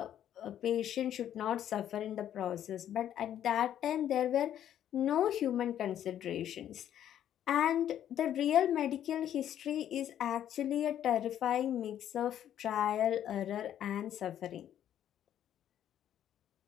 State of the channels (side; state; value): right; quieter; 10.7 dB